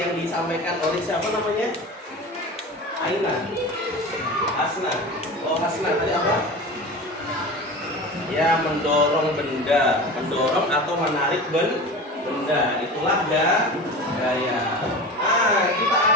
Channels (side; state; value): both; normal; correlation 0.32